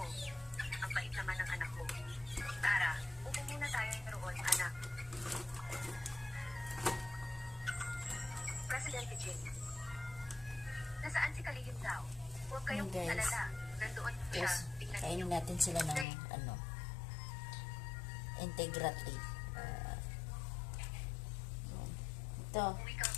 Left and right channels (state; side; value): drops out; right; at 16.1 s